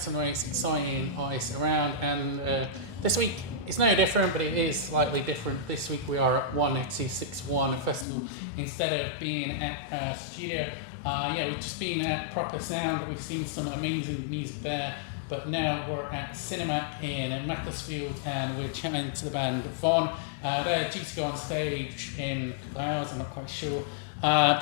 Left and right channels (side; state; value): right; drops out; at 8.1 s